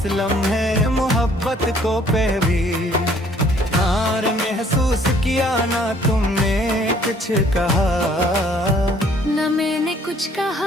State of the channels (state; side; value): normal; both; correlation 0.60